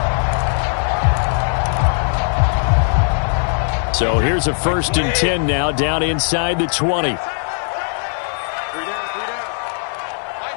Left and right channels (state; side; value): silent; right; 67 dB below the other